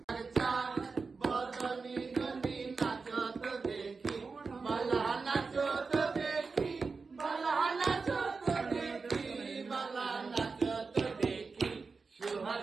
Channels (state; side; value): quieter; left; 4.5 dB